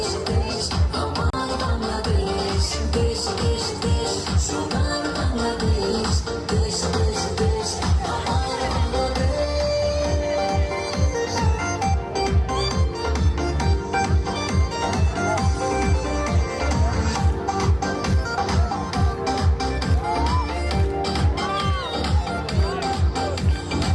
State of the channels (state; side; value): identical; both; correlation 1.00